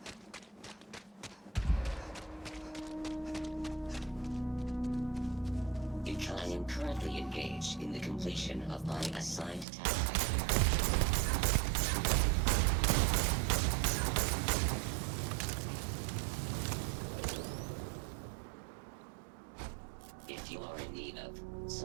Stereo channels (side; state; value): left; drops out; at 9.7 s